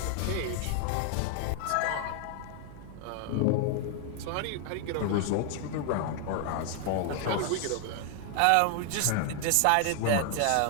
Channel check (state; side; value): different; both; correlation 0.00